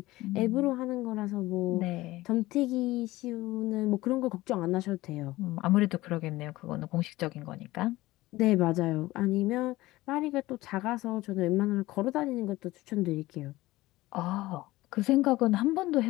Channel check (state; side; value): quieter; right; 18.3 dB